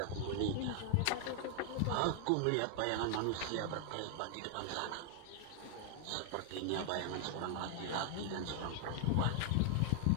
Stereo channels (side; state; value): both; different; correlation 0.00